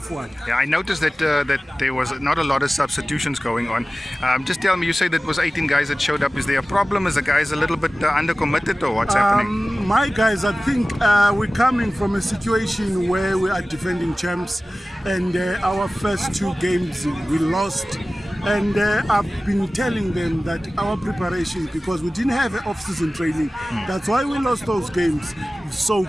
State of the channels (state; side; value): normal; both; correlation 0.97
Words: one. Yeah, I noticed that that there was not a lot of substitutions going on. Just tell me, you say that was 18 guys that showed up. Is there a problem? Is the guys a little bit undercommitted, or what's happening? My guys, I think we're coming from a situation where we are defending champs, and our first 2 games we lost. And I've been telling them that our preparation, because we didn't have off-season training, that's why we lost those games so